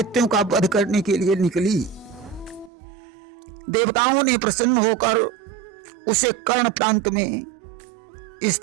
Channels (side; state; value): left; drops out; at 2.7 s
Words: का वध करने के लिए निकली। देवताओं ने प्रसन्न होकर उसे कर्ण प्रांत में